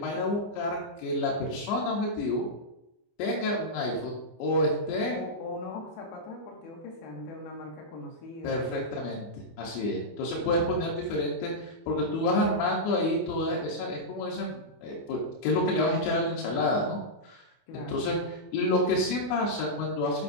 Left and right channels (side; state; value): right; late; 24 ms